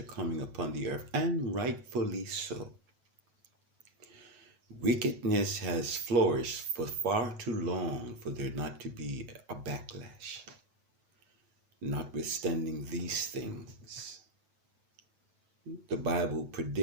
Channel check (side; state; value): left; late; 9.2 ms